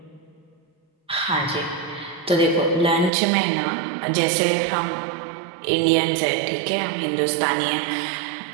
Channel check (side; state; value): left; drops out; at 3.1 s